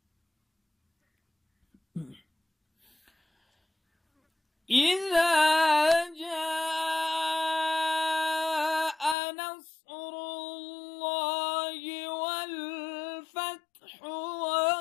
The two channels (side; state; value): right; drops out; at 9.2 s